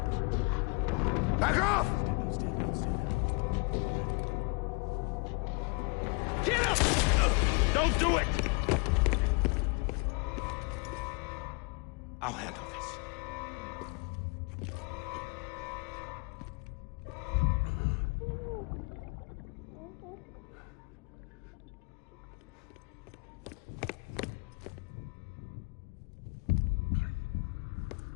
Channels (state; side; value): quieter; right; 31.3 dB